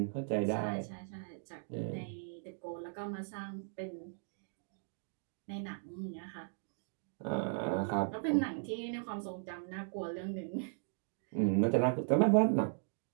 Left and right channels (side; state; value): left; silent; digital silence